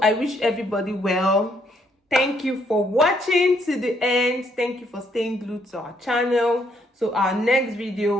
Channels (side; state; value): both; normal; correlation 0.71